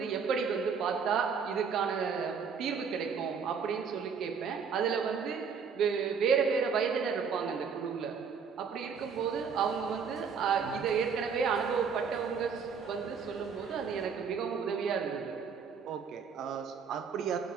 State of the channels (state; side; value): quieter; left; 6.1 dB